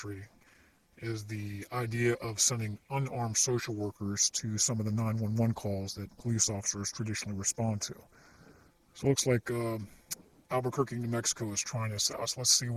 is the idea of sending unarmed social workers to some of the 911 calls that police officers traditionally respond to. So it looks like Albuquerque, New Mexico is trying this out. So let's see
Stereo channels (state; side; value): identical; both; correlation 1.00